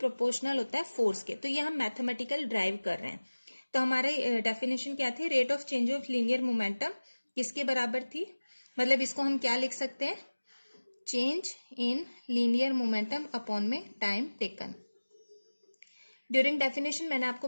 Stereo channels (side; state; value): both; inverted; correlation -1.00